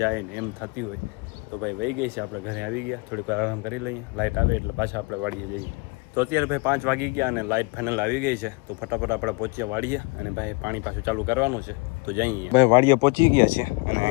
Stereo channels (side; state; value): right; quieter; 28.7 dB